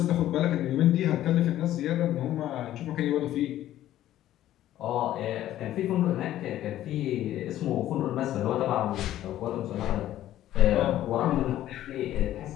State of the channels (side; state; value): right; quieter; 13.1 dB